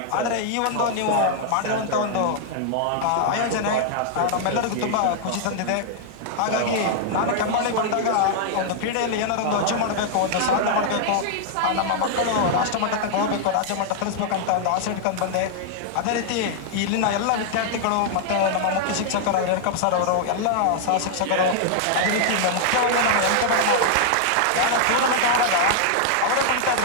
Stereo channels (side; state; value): both; different; correlation -0.01